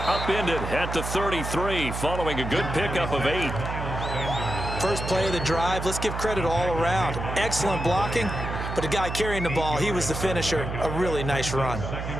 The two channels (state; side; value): noise; right; hum, 5 dB below the sound